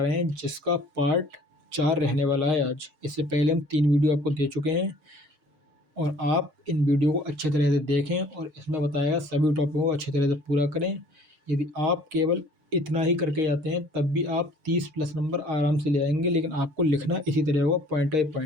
रहे हैं, जिसका पार्ट 4 रहने वाला है आज। इससे पहले हम 3 वीडियो आपको दे चुके हैं और आप इन वीडियो को अच्छे तरह से देखें और इसमें बताया गया सभी टॉपिकों को अच्छी तरह से पूरा करें। यदि आप केवल इतना ही करके जाते हैं तब भी आप 30+ नंबर आराम से ले आएंगे, लेकिन आपको लिखना इसी तरह होगा, पॉइंट बाई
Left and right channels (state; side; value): late; left; 6.5 ms